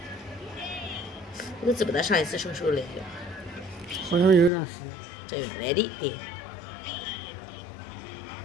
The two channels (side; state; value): right; drops out; at 4.5 s